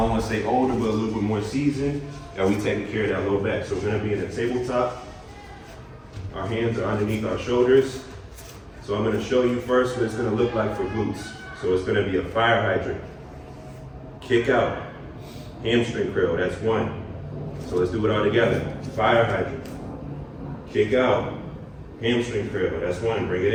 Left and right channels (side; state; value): both; identical; correlation 1.00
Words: want to say older, but a little bit more seasoned, that we taking care of that low back. So we're gonna be in a tabletop. Our hands are underneath our shoulders. So I'm gonna show you first what it's gonna look like for glutes. So it's gonna be a fire hydrant, kick out, hamstring curl, that's one. So let's do it all together. Fire hydrant, kick out, hamstring curl, that's one, bring it